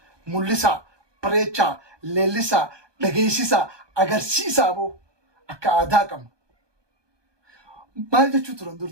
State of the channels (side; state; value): left; late; 1.2 ms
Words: mul'isaa bareechaa leellisaa dhageessisaa agarsiisaa aboo akka aadaa qabna maal jechuu turan dur